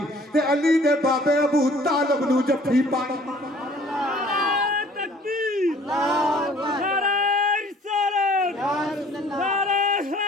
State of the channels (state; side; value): normal; both; correlation 0.54